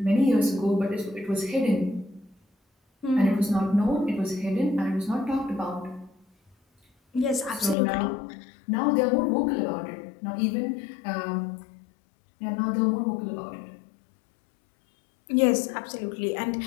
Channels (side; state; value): right; drops out; at 7.8 s